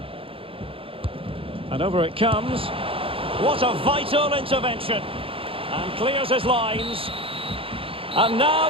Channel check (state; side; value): late; left; 0.27 ms